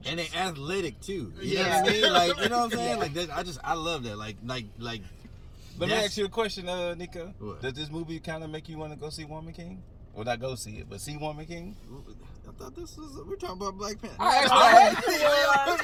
And they athletic too. You Yeah. know what I mean? Like, you know what I'm saying? Yeah. Like that, I love that. Like Let me that's- ask you a question, Nico. What? Does this movie kind of make you want to go see Woman King? Well, not go see it, but see Woman King? I thought we're talking about Black Panther.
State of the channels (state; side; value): identical; both; correlation 1.00